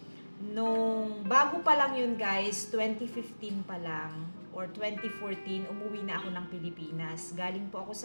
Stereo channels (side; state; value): both; inverted; correlation -1.00